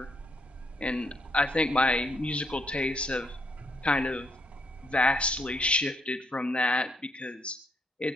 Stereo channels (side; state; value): both; normal; correlation 0.74